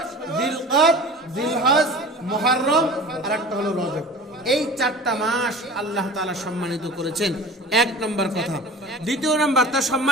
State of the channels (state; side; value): normal; both; correlation 0.38